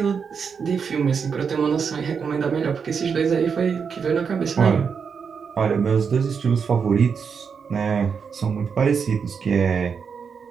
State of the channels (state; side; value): quieter; left; 6.2 dB